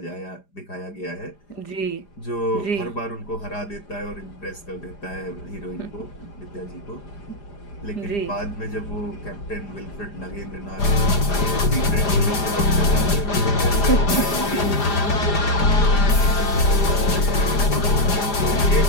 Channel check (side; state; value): right; late; 4.9 ms